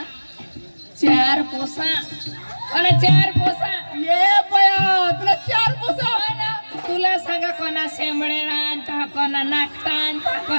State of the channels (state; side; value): inverted; both; correlation -1.00